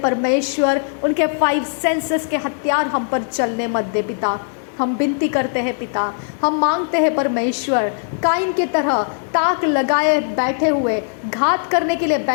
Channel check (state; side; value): silent; right; digital silence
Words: उनके 5 सेंसेस के हथियार हम पर चलने मत दे पिता। हम विनती करते हैं पिता, हम मांगते हैं परमेश्वर, काइन की तरह ताक लगाए बैठे हुए, घात करने के लिए